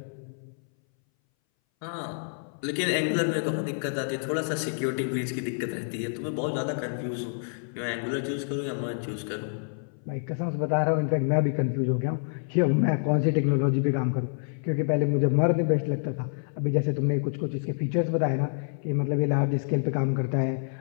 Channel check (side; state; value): right; silent; 60 dB below the other